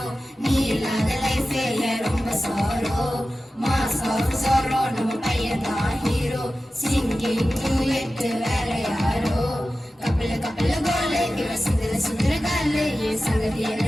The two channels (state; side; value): normal; both; correlation 0.94